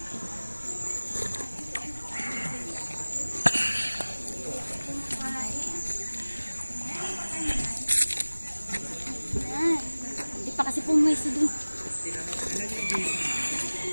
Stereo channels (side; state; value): both; inverted; correlation -1.00